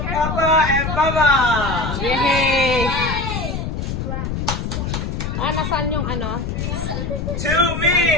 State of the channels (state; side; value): noise; left; rumble, 3 dB below the sound